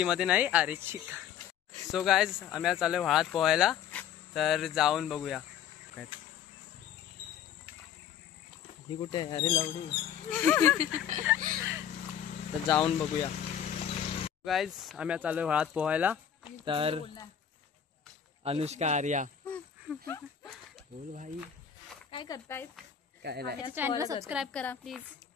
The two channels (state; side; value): quieter; right; 9.1 dB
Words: नाही अरे चिक सो गाईज आम्ही चाललोय वाळात पोहायला तर जाऊन बघूया काय ही कुठे आहे अरे लावडी तर जाऊन बघूया गाईज आम्ही चाललोय वाळात पोहायला तर अनुष्का आर्या बोल भाई काय करताय काय नाही चॅनलला सबस्क्राईब करा प्लीज